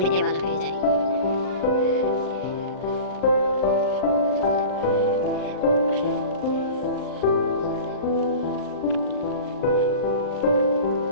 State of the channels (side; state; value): right; late; 39 ms